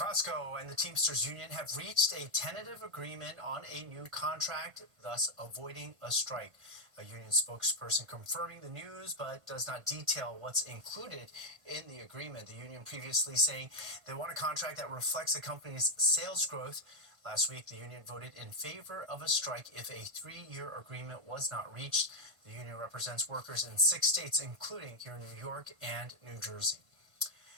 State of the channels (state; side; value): late; left; 1.5 ms